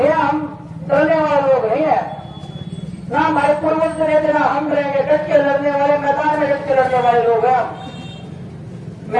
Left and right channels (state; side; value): identical; both; correlation 1.00